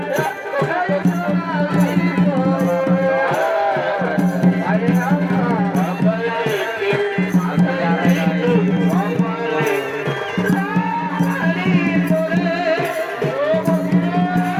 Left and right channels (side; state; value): both; identical; correlation 1.00